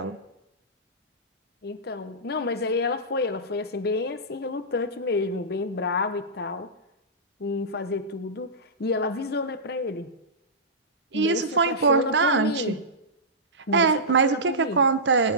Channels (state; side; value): normal; both; correlation -0.16